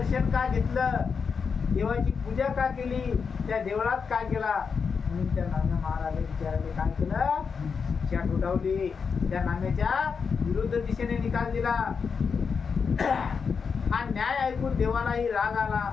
का घेतलं? देवाची पूजा का केली? त्या देवळात काय केला? म्हणून त्या नाम्या महाराजांनी विचाराने काय केलं? शिक्षा ठोठावली. त्या नाम्याच्या विरुद्ध दिशेने निकाल दिला. हा न्याय ऐकून देवालाही राग आला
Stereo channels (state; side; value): quieter; right; 5.7 dB